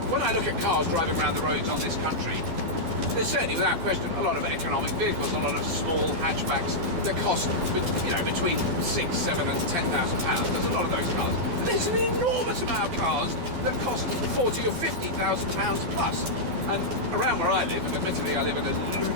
When I look at cars driving around the roads on this country, there's certainly, without question, a lot of economic vehicles, a lot of small hatchbacks that cost, between £6,000, £7,000 and £10,000. There's a lot of those cars. But there's an enormous amount of cars that cost £40,000 or £50,000 plus. And around where I live, and admittedly I live in a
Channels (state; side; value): late; left; 12 ms